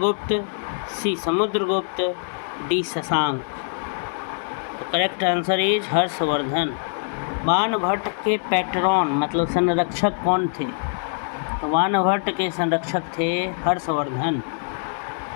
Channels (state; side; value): silent; right; digital silence